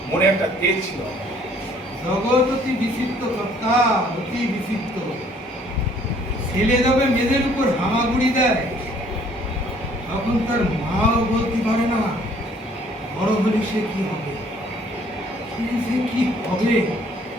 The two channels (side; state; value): both; normal; correlation 0.60